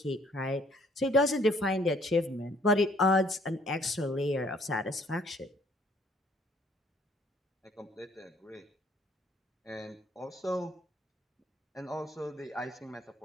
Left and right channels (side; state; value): both; normal; correlation 0.62